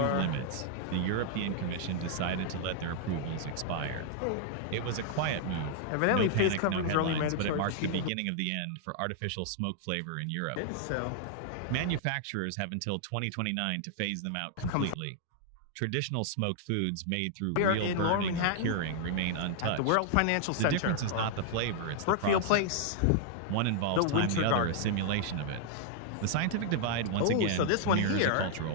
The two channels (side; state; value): both; different; correlation 0.00